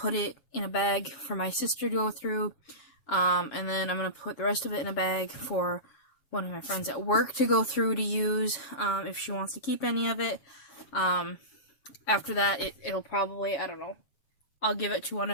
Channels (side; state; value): right; late; 7.3 ms